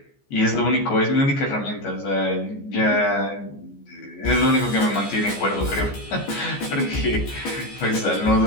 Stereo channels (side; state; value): right; late; 14 ms